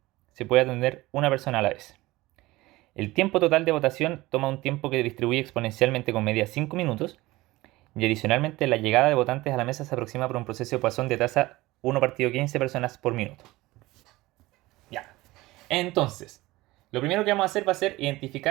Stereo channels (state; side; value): quieter; left; 19.3 dB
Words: Se puede atender una persona a la vez. El tiempo total de votación toma un tiempo que distribuye exponencialmente con media 5 minutos, y adicionalmente la llegada de votantes a la mesa se aproxima por un proceso de Poisson de tasa 1/15 personas por minuto. Ya. Entonces, lo primero que vamos a hacer va a ser